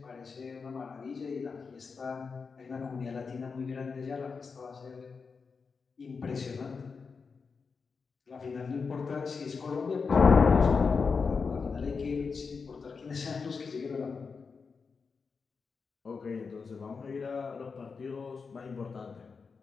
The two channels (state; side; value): quieter; right; 5.1 dB